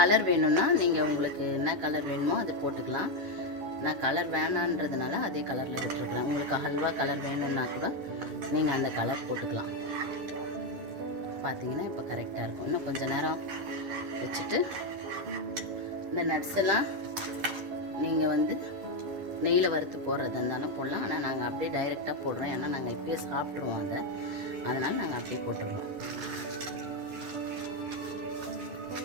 வேணும்னா நீங்கள் உங்களுக்கு என்ன கலர் வேணுமோ அதை போட்டுக்கலாம். நான் கலர் வேணான்றதுனால அதே கலரில் விட்டுருக்குறேன். உங்களுக்கு ஹல்வா கலர் வேணும்னா கூட நீங்கள் அந்த கலர் போட்டுக்கலாம். பார்த்தீங்கன்னா இப்போ கரெக்டாக இருக்கும். இன்னும் கொஞ்சம் நேரம் வச்சுட்டு இந்த நட்ஸ் எல்லாம் நீங்கள் வந்து நெய்யில் வறுத்து போடுறதா இருந்தாலும் போடலாம். ஆனால் நாங்கள் அப்படியே டைரெக்டாக போடுறோம். ஏன்னா நாங்கள் இப்பயே சாப்பிட்ருவோம் அதை, அதனால் நாங்கள் அப்படியே போட்டுருவோம்.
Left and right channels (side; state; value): left; late; 10 ms